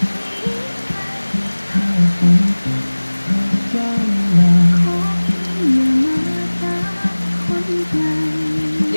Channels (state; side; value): inverted; both; correlation -1.00